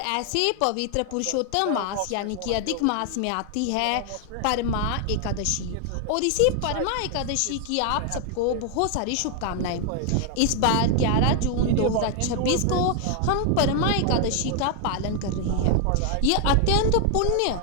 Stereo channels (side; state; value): both; different; correlation 0.00